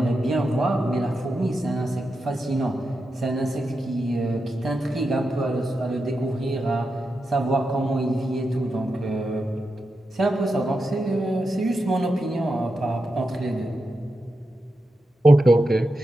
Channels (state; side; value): normal; both; correlation 0.88